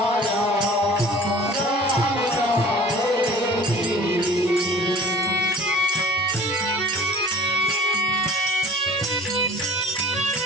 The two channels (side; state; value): both; normal; correlation 0.46